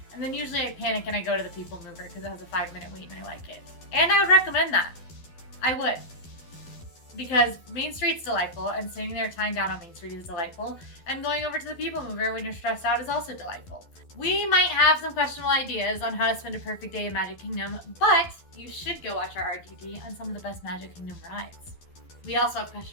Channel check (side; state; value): right; late; 12 ms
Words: And then usually I panic and I go to the People Mover because it has a 5-minute wait and I like it. And I would recommend that. I would. Because Main Street's delightful and sitting there tying down on Main Street is delightful. And going over to the People Mover when you're stressed out is also delightful. We might have some questionable ideas on how to spend a perfect day in Magic Kingdom, but you should go watch our RTT on some of the best Magic Kingdom rides. We also have